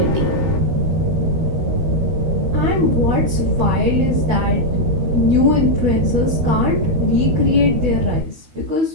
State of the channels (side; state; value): left; late; 13 ms